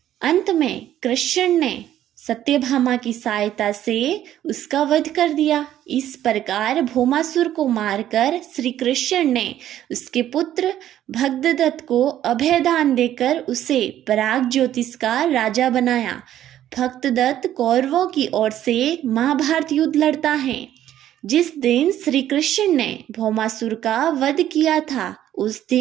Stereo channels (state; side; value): quieter; left; 11.9 dB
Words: अंत में कृष्ण ने सत्यभामा की सहायता से उसका वध कर दिया। इस प्रकार भौमासुर को मारकर श्री कृष्ण ने उसके पुत्र भगदत्त को अभयदान देकर उसे पराग ज्योतिष का राजा बनाया। भगदत्त कौरवों की ओर से महाभारत युद्ध लड़ता है। जिस दिन श्री कृष्ण ने भौमासुर का वध किया था, उस